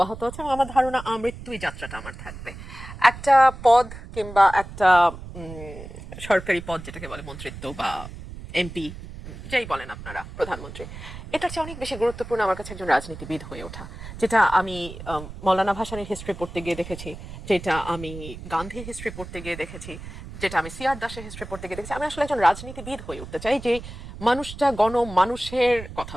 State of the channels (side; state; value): right; noise; rumble, 12 dB below the sound